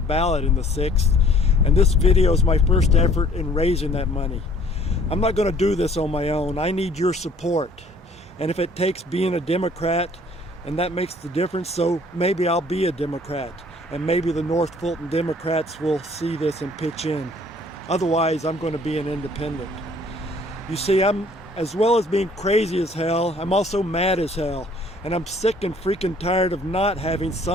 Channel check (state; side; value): normal; both; correlation 0.57